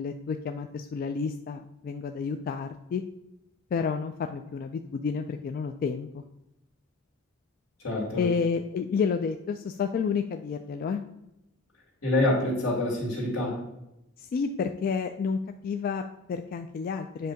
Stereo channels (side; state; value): right; quieter; 3.9 dB